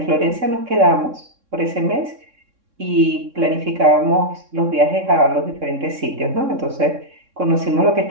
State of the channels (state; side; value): late; left; 3.6 ms